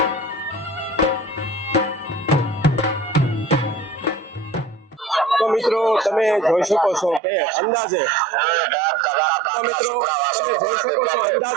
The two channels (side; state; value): left; drops out; at 7.2 s